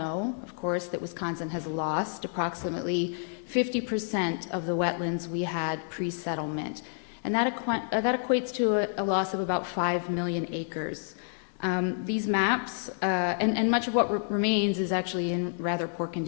of course, that Wisconsin has lost approximately 50% of the wetlands we had pre-settlement, and that equates to a loss of about 5 million acres. These maps, and much of what remains is actually in rather poor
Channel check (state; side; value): silent; right; digital silence